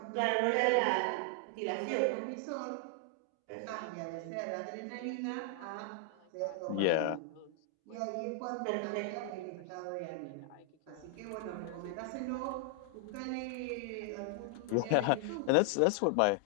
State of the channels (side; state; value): both; different; correlation 0.00